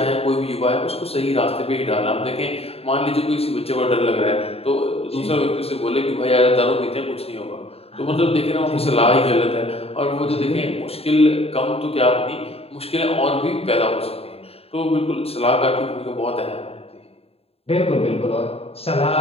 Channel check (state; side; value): late; right; 0.29 ms